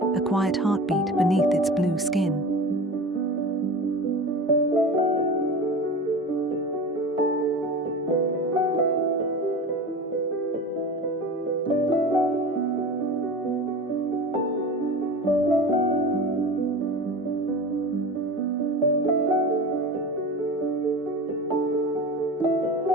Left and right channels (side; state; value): both; normal; correlation 0.32